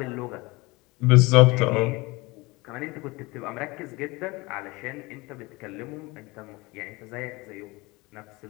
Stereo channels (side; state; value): right; quieter; 23.4 dB